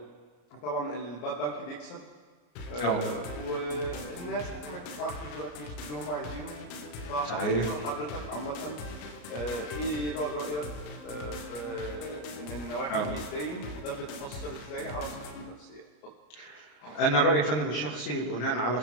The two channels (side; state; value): right; late; 34 ms